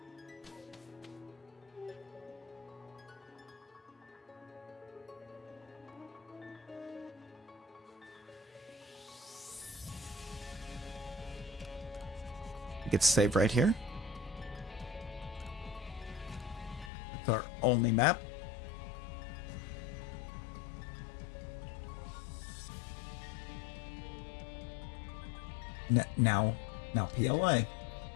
We get to save right here. It's our only map. Now PLA.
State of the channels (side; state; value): right; drops out; at 16.9 s